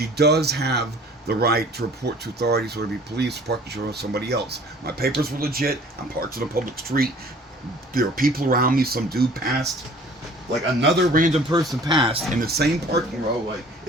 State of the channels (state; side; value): normal; both; correlation 0.51